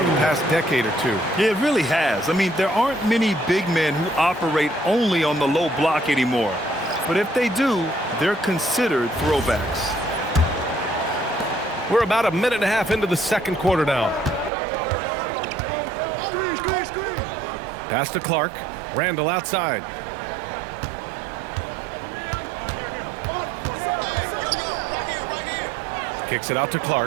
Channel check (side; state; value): left; drops out; at 14.5 s